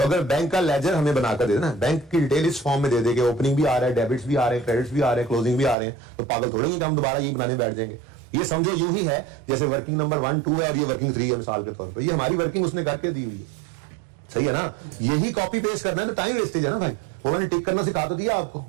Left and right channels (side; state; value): left; drops out; at 5.8 s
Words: अगर बैंक का लेजर हमें बनाकर दे देना, बैंक की डिटेल इस फॉर्म में दे देंगे, ओपनिंग भी आ रहा है, डेबिट्स भी आ रहे हैं, क्रेडिट्स भी आ रहे हैं, क्लोजिंग भी आ रहे हैं, तो पागल थोड़े ही हम दोबारा ये बनाने बैठ जाएंगे। ये समझो यूं ही है जैसे वर्किंग नंबर 1, 2 है और ये वर्किंग 3 है मिसाल के तौर पर, ये हमारी वर्किंग उसने करके दी हुई है, सही है ना। यही कॉपी पेस्ट करना है तो टाइम वेस्टेज है ना भाई, उन्होंने टिक करना सिखा तो दिया आपको,